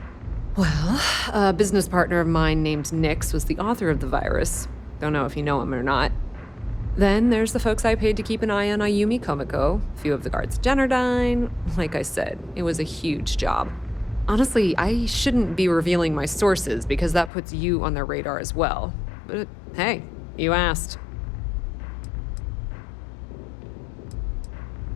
Well, a business partner of mine named Nix was the author of the virus. Don't know if you know him or not. Then there's the folks I paid to keep an eye on Ayumi Komiko, a few of the guards at Generdyne. Like I said, it was a huge job. Honestly, I shouldn't be revealing my sources because that puts you on their radar as well. But hey, you asked.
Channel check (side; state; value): right; drops out; at 17.3 s